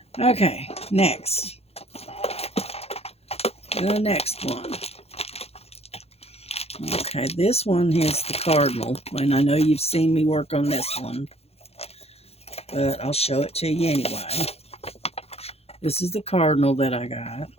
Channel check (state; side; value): late; right; 0.29 ms